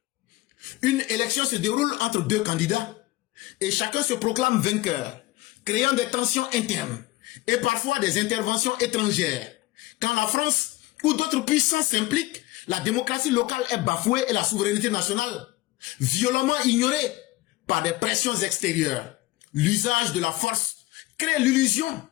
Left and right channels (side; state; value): right; quieter; 18.7 dB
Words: Une élection se déroule entre deux candidats et chacun se proclame vainqueur, créant des tensions internes et parfois des interventions étrangères. Quand la France ou d'autres puissances s'impliquent, la démocratie locale est bafouée et la souveraineté nationale violemment ignorée par des pressions extérieures. L'usage de la force crée l'illusion